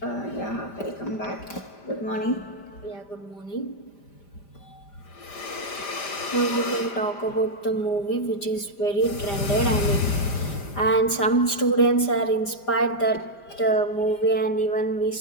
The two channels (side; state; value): right; late; 5.0 ms